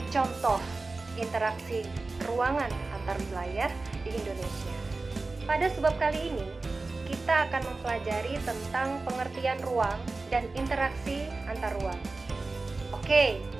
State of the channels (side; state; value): left; quieter; 3.5 dB